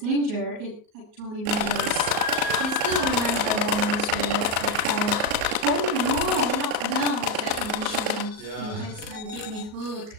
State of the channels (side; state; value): left; late; 38 ms